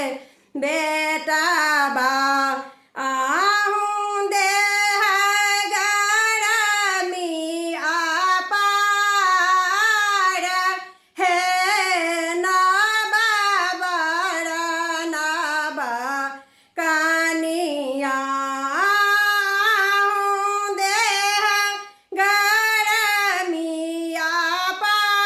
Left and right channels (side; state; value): both; identical; correlation 1.00